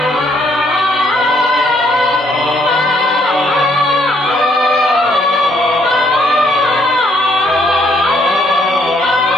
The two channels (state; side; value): normal; both; correlation 0.69